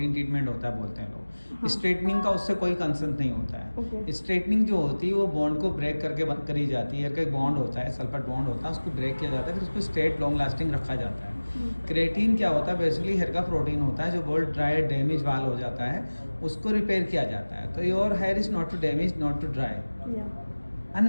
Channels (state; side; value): inverted; both; correlation -1.00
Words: ट्रीटमेंट होता है बोलते हैं लोग। हाँ। स्ट्रेटनिंग का उससे कोई कंसर्न नहीं होता है। ओके। स्ट्रेटनिंग जो होती है वो बॉन्ड को ब्रेक करके बंद करी जाती है। हेयर का एक बॉन्ड होता है, सल्फर बॉन्ड होता है, उसको ब्रेक किया जाता है, फिर उसको स्ट्रेट लॉन्ग लास्टिंग रखा जाता है। क्रेटिन क्या होता है? बेसिकली हेयर का प्रोटीन होता है जो बहुत ड्राई डैमेज वाल हो जाता है, उसको रिपेयर किया जाता है। तो your hair is not too damage, not too dry,